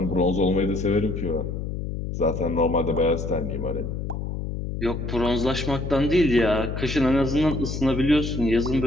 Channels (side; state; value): left; noise; hum, 5 dB below the sound